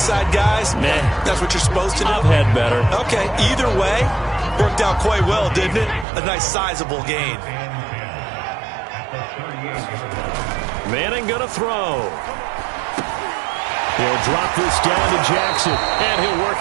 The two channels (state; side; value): drops out; left; at 6.1 s